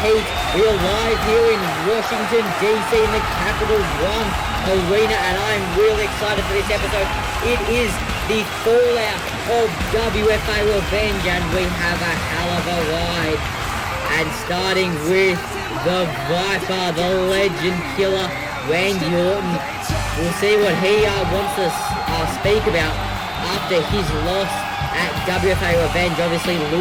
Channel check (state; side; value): identical; both; correlation 1.00